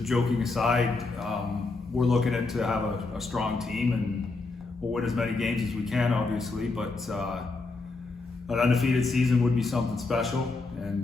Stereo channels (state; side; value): quieter; right; 3.7 dB